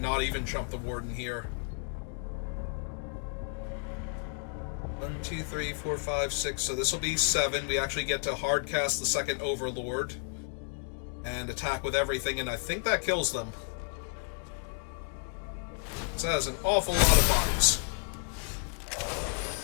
even chump the Warden here. 1, 2, 3, 4, 5, 6. So this will be 7. We actually get to hard cast the second Overlord and attack with everything, and I think that kills them. So that has an awful lot of bodies.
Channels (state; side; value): quieter; right; 37.9 dB